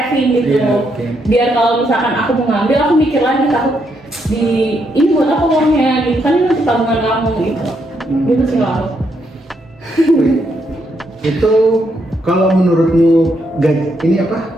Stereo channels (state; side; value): normal; both; correlation 0.77